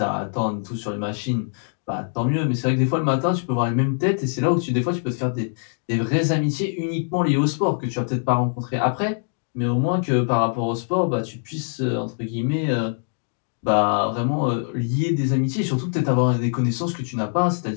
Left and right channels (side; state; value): right; silent; digital silence